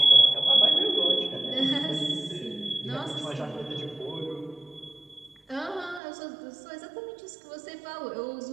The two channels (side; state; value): left; drops out; at 6.0 s